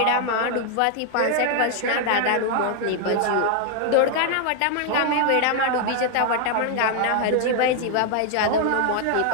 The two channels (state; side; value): different; both; correlation 0.00